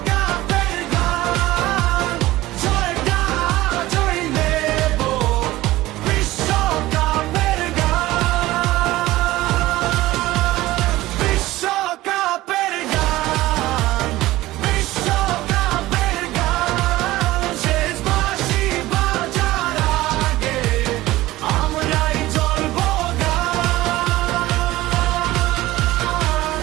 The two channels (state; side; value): quieter; left; 17.2 dB